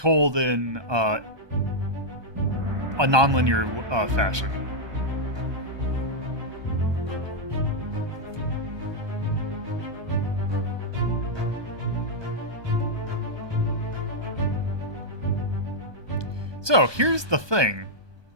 in a non-linear fashion. So here's the thing.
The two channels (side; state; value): left; late; 1.2 ms